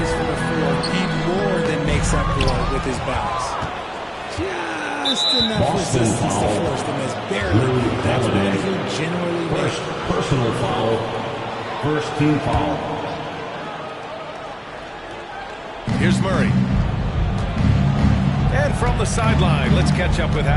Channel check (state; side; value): identical; both; correlation 1.00